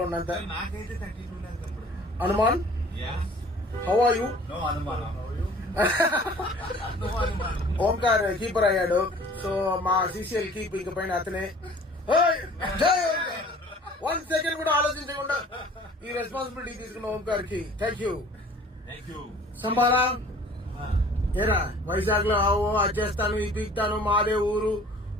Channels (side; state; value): both; normal; correlation 0.49